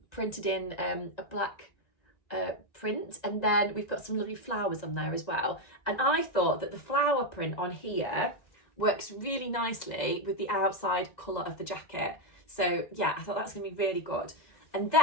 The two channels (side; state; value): right; late; 2.0 ms